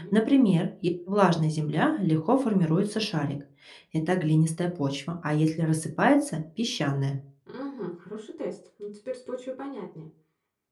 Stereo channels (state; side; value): identical; both; correlation 1.00